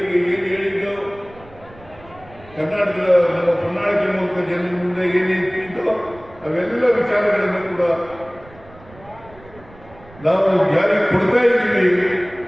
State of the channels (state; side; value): noise; right; rumble, 23 dB below the sound